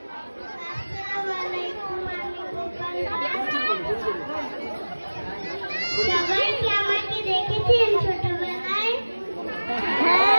সবাই কি আমাকে দেখেছেন ছোটবেলায়?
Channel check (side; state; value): both; inverted; correlation -1.00